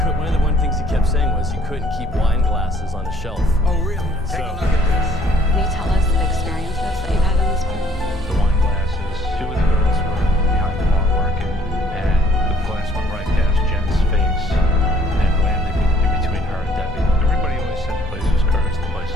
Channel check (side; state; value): both; normal; correlation 0.61